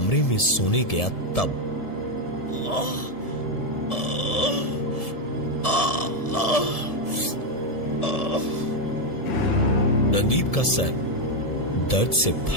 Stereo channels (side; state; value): right; late; 1.7 ms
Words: में सोने गया तब रणदीप का सर दर्द से